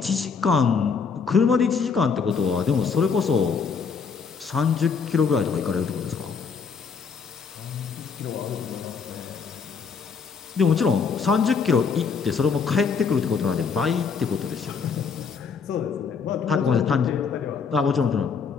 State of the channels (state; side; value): quieter; right; 5.7 dB